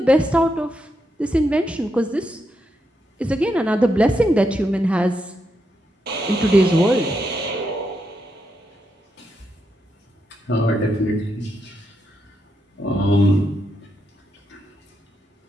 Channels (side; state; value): both; normal; correlation 0.82